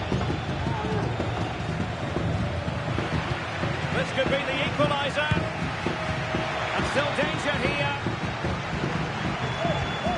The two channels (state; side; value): identical; both; correlation 1.00